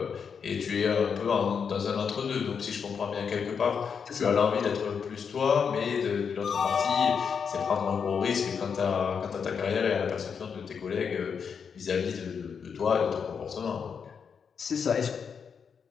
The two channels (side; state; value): right; quieter; 6.5 dB